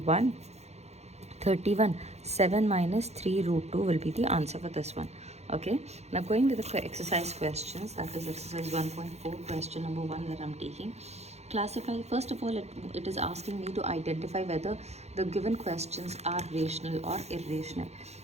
7 minus 3 root 2 will be the answer for this one. Okay, now going with the exercise questions, that is exercise 1.4, question number 1 that I'm taking. Classify, first of all, it is asking me to identify whether the given questions are rational or irrational.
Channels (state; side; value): late; left; 0.31 ms